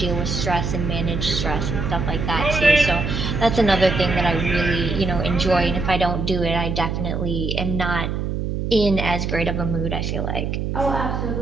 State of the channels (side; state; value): right; noise; hum, 2 dB below the sound